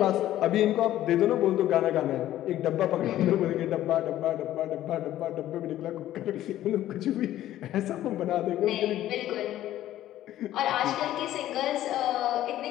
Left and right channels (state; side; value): quieter; right; 13.3 dB